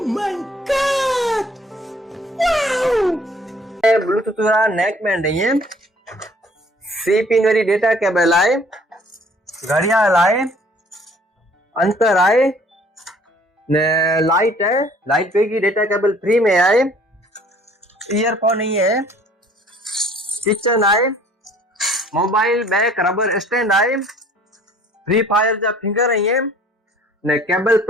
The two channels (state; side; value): normal; both; correlation 0.56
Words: my god, wow! Bluetooth वाला नेक बैंड है, सी पिन वाली डेटा केबल आए, घड़ियाल आए, अंतर आए ने लाइट है, लाइट पे की डेटा केबल फ्री में आए, ईयरफोन नहीं है, किचन आए, मोबाइल बैक रबर स्टैंड आए, फ्री फायर जा फिंगर है ने केबल